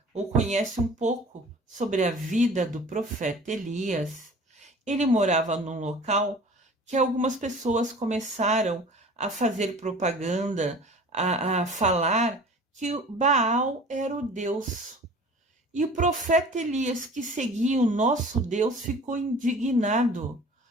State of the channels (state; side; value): normal; both; correlation 0.44